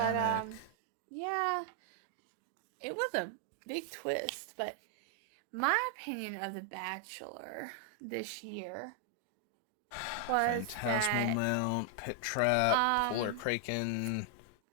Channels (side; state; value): both; different; correlation 0.00